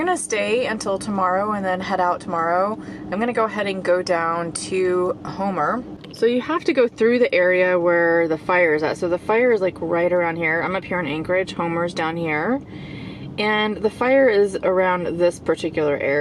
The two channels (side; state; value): both; identical; correlation 1.00